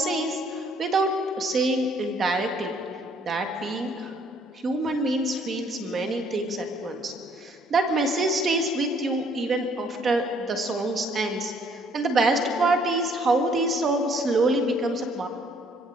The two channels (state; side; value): normal; both; correlation 0.63